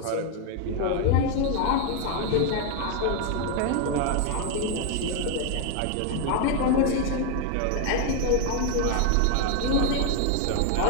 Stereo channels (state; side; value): different; both; correlation 0.01